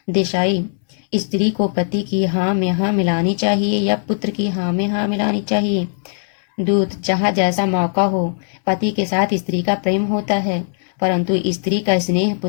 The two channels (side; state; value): right; silent; 60 dB below the other